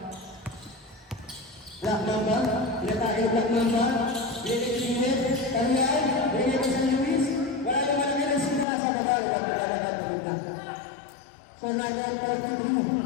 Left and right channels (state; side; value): drops out; right; at 8.7 s